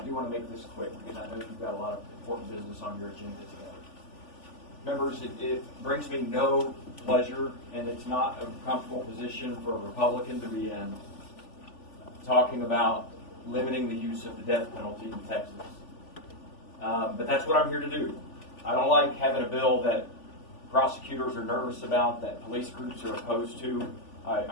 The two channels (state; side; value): late; right; 3.4 ms